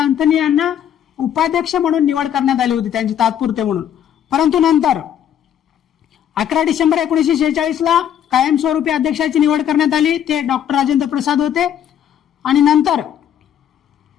यांना उपाध्यक्ष म्हणून निवड करण्यात आली होती त्यांची तात्पुरते म्हणून. परंतु नंतर 11 डिसेंबर 1946ला कायमस्वरूपी अध्यक्षाची निवड करण्यात आली, ते डॉक्टर राजेंद्र प्रसाद होते आणि नंतर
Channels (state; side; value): quieter; right; 9.8 dB